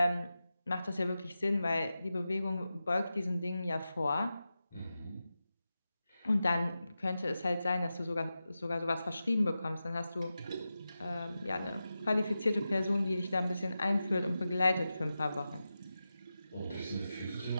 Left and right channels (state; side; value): inverted; both; correlation -0.92